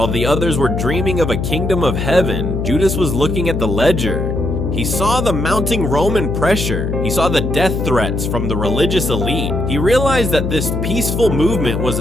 the others were dreaming of a kingdom of heaven, Judas was looking at the ledger. He saw the mounting Roman pressure. He saw the death threats from the religious elite. He realized that this peaceful movement was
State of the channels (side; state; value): left; noise; hum, 2 dB below the sound